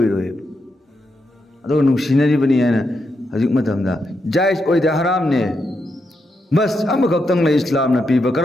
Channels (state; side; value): normal; both; correlation 0.83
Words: अदो नुंसिनरिबनि हायना हजिक मतमदा जायज ओइदे हरामने बस अमखक्तंग ले इस्लामना पीबा